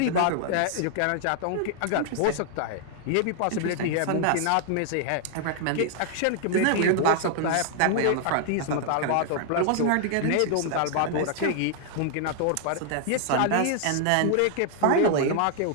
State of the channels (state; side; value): different; both; correlation 0.00